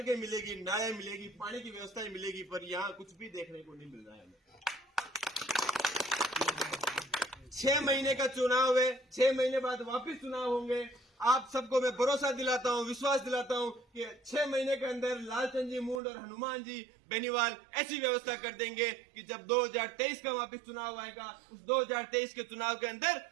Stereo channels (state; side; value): drops out; left; at 16.0 s